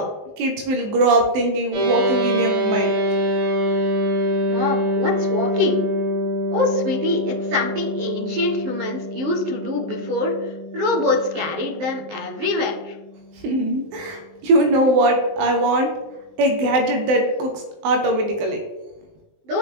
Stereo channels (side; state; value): left; late; 19 ms